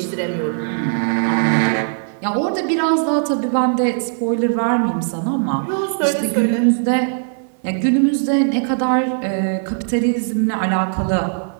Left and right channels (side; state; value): left; silent; digital silence